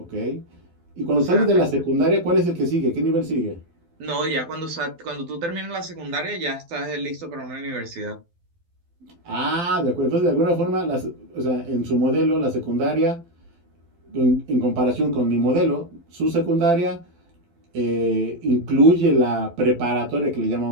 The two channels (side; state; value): left; late; 12 ms